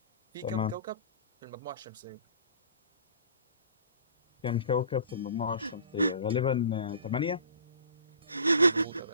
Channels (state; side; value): inverted; both; correlation -0.46